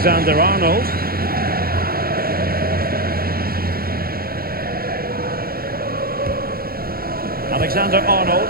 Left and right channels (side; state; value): left; late; 0.44 ms